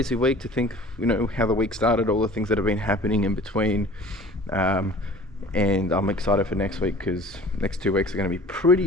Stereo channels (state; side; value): normal; both; correlation 0.46